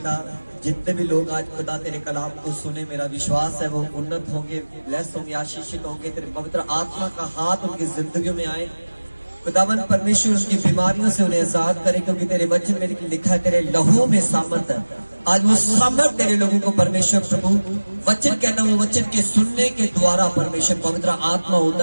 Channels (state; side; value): inverted; both; correlation -1.00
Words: जितने भी लोग आज खुदा तेरे कलाम को सुने, मेरा विश्वास है वो उन्नत होंगे, ब्लेस होंगे, आशीषित होंगे। तेरे पवित्र आत्मा का हाथ उनकी जिंदगियों में आए। खुदावन परमेश्वर उनकी बीमारियों से उन्हें आजाद करे, क्योंकि तेरे वचन में लिखा है तेरे लहू में सामर्थ है। आज वो सामर्थ तेरे लोगों को परमेश्वर प्रभु वचन कहना, वो वचन के सुनने के द्वारा परमेश्वर पवित्र आत्मा